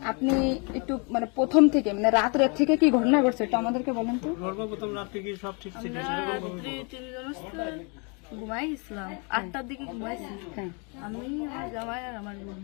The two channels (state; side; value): quieter; right; 34.1 dB